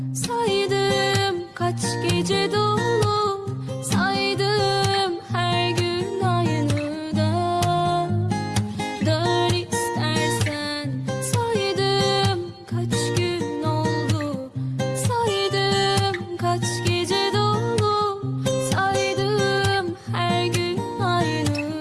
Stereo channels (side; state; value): both; identical; correlation 1.00